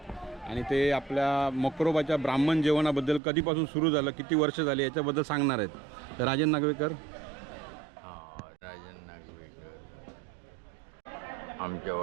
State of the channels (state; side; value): drops out; left; at 3.2 s